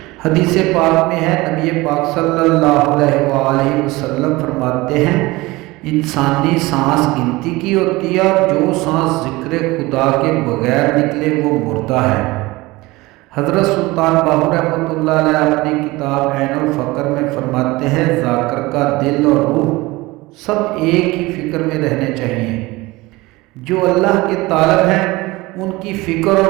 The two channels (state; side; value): quieter; left; 21.1 dB